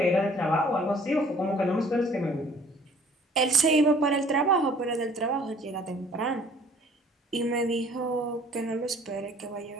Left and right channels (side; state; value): both; normal; correlation 0.55